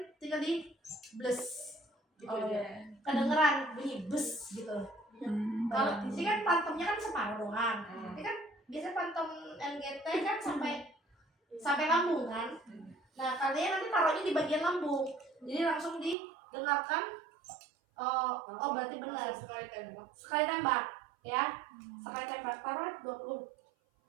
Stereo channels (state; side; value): drops out; left; at 16.2 s